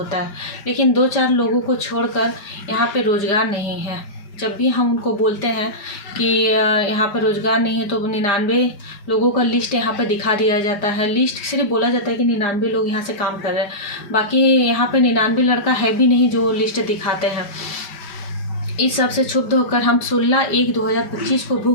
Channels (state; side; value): late; right; 5.2 ms